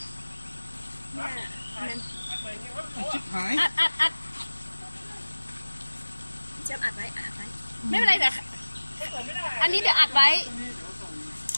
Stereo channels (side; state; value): both; inverted; correlation -1.00